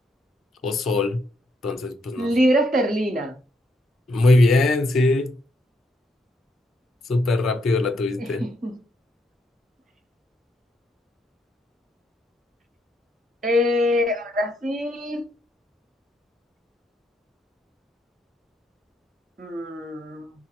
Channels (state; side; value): normal; both; correlation 0.77